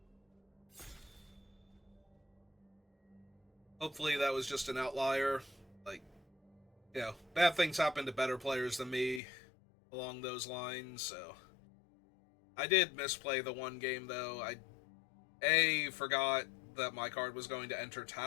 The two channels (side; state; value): right; drops out; at 9.2 s